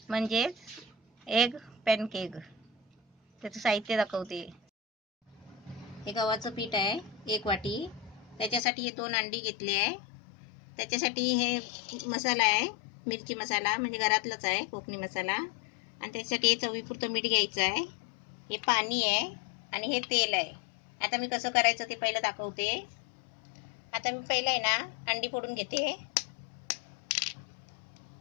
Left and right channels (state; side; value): drops out; right; at 8.6 s